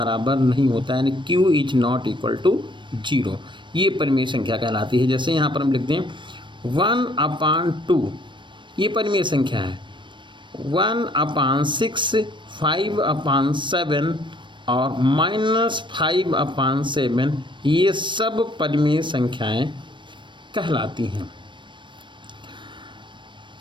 नहीं होता है, यानी Q is not equal to 0। ये परिमेय संख्या कहलाती है। जैसे यहाँ पर हम लिखते हैं 1/2, ये परिमेय संख्या है। 1/6, 5/7 और -5/7, ये सब परिमेय संख्याएं कहलाती हैं।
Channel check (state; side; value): late; left; 0.23 ms